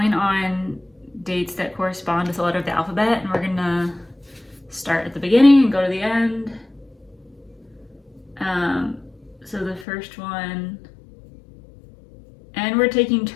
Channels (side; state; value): right; drops out; at 9.9 s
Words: on dates that correspond with the letter of the alphabet, and we're gonna start at the beginning and go to the end. So the first one, and we're taking